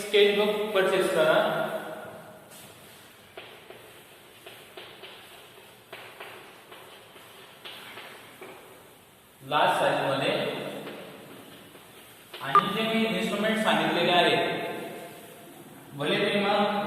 परचेस करा. लार्ज साइज मध्ये, आणि जे मी इन्स्ट्रुमेंट सांगितलेले आहेत, भले ते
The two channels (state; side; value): identical; both; correlation 1.00